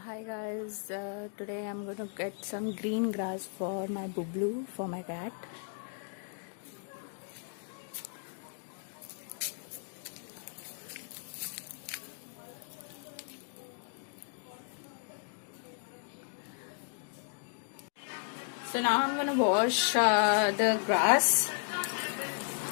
Hi guys, today I'm going to get some green grass for my Bublu, for my cat. So now I'm going to wash the grass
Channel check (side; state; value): right; silent; digital silence